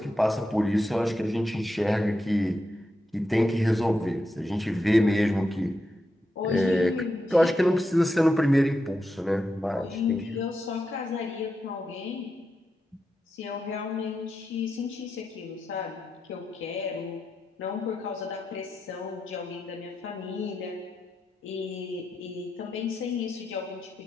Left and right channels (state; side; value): normal; both; correlation 0.87